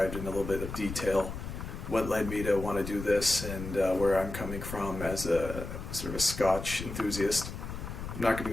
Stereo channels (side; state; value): left; noise; rumble, 8 dB below the sound